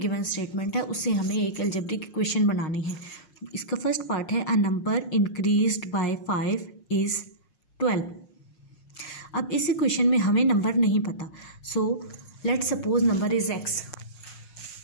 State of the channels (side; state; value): right; late; 5.5 ms